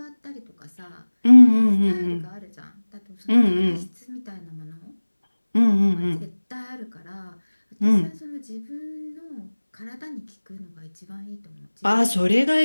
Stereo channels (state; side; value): inverted; both; correlation -1.00